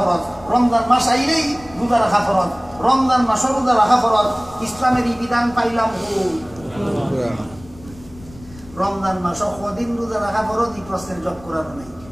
রমজান মাস আইলেই রোজা রাখা ফরজ, রমজান মাস রোজা রাখা ফরজ। ইসলামের এই বিধান পাইলাম রমজান মাস কদিন রোজা রাখা ফরজ, এই প্রশ্নের জবাব কোরআন নেই।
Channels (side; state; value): left; noise; rumble, 21 dB below the sound